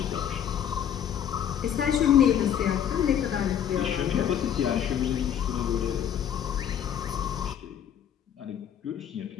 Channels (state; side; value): quieter; right; 9.4 dB